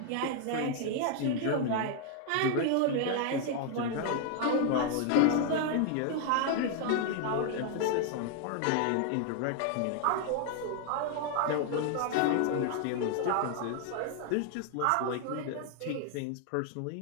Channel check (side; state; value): both; different; correlation 0.00